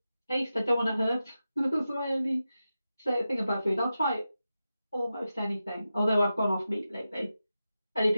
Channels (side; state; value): both; inverted; correlation -0.91